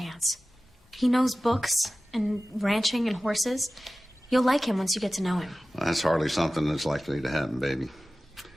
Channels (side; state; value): both; normal; correlation 0.97